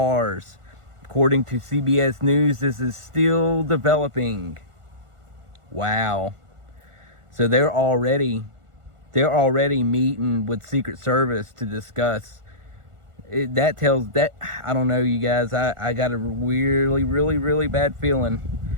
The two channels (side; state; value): left; late; 1.4 ms